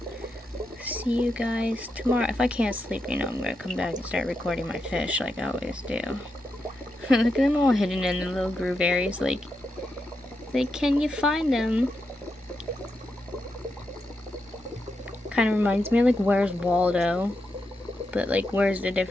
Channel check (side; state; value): both; normal; correlation 0.85